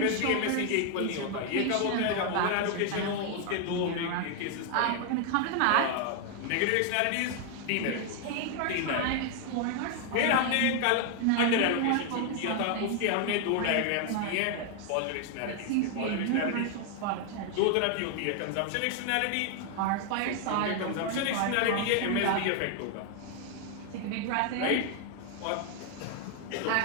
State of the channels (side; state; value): both; different; correlation 0.00